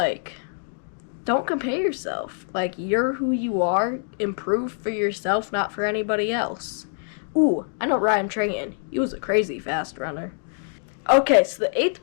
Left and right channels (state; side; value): silent; right; digital silence